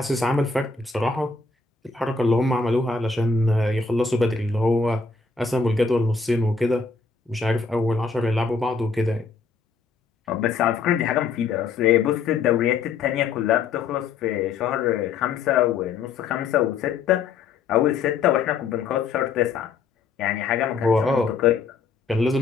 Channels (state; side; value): quieter; right; 4.8 dB